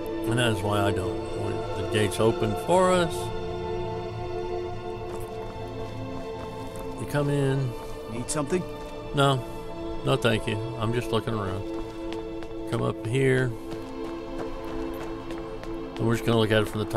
And that is why I don't. When the gate's open for us, you come in. Need something? No, no thank you. I'm just looking around. Come up here. And we're just going to look at it from the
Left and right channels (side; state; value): both; identical; correlation 1.00